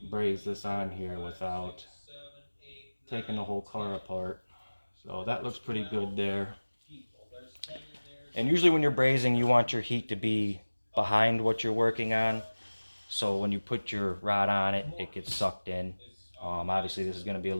braze this on here without taking the whole car apart. So that looks pretty good there. And usually when you're brazing, you want your heat to be behind what you're working on. So when you put your rod on it, it gets sucked in. Obviously this is going to be a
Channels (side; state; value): both; inverted; correlation -1.00